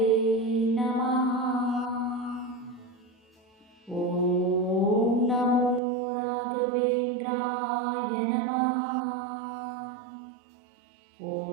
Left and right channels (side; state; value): left; drops out; at 5.8 s